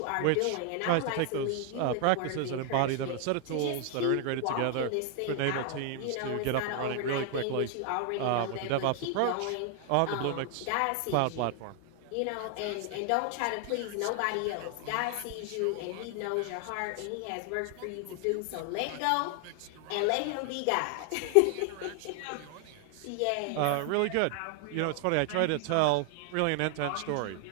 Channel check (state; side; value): different; both; correlation 0.00